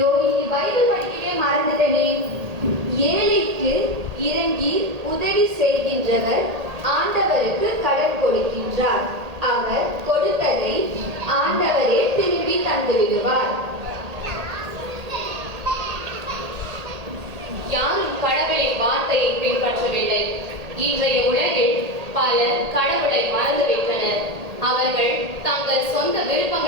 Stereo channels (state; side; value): late; left; 1.8 ms